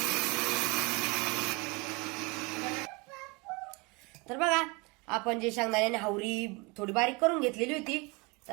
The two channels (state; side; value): quieter; left; 27.9 dB